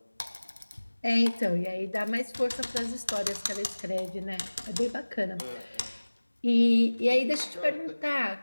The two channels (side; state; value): both; inverted; correlation -1.00